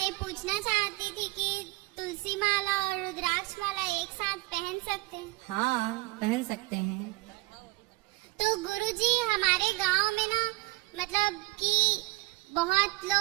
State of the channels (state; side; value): quieter; left; 21.7 dB